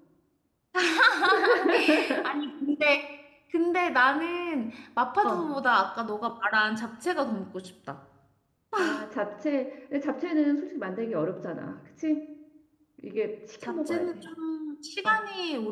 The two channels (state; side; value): identical; both; correlation 1.00